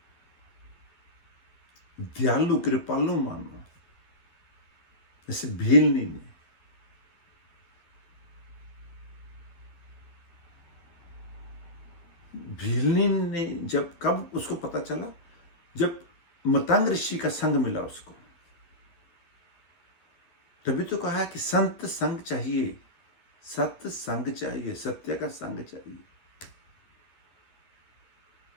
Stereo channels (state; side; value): late; right; 12 ms